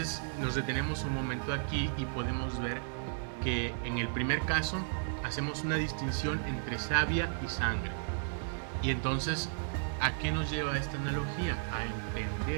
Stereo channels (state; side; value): silent; left; digital silence